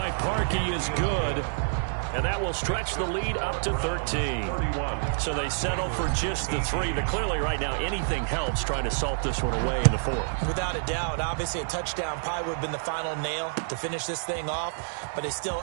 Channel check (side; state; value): left; silent; digital silence